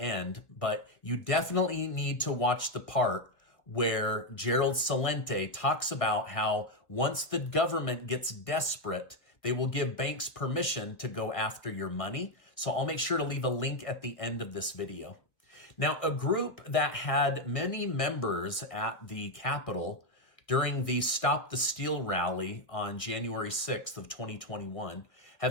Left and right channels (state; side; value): late; right; 1.5 ms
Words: but you definitely need to watch the part where Gerald Celente talks about how once the government gets desperate, they will give banks permission to go after your money. So I'll make sure to leave a link at the end of this video. Now, a group that had many members at the Capitol during the Stop the Steal rally on January 6th of 2021